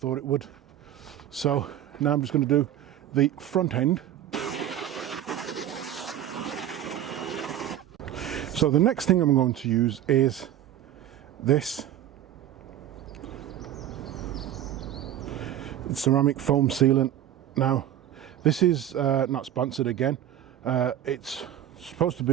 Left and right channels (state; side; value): quieter; left; 11.5 dB